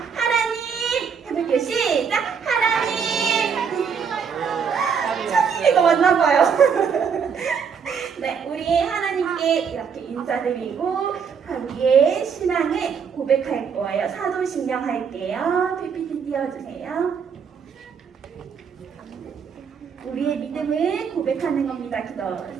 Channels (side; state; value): left; quieter; 6.6 dB